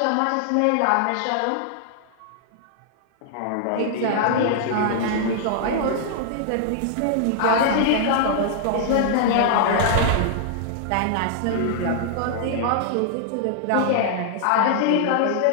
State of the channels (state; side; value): different; both; correlation -0.01